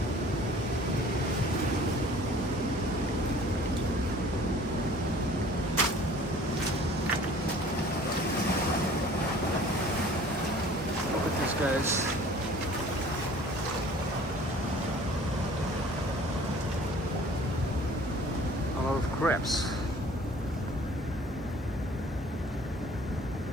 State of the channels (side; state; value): both; normal; correlation 0.50